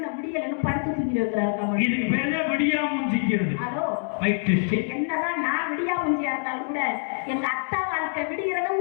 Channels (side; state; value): right; silent; digital silence